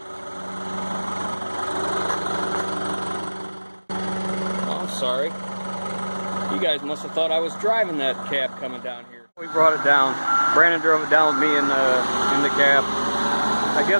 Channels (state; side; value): inverted; both; correlation -1.00